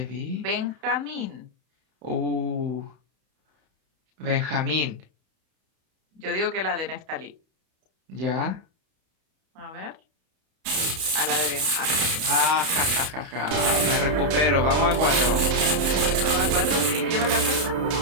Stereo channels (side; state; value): left; late; 31 ms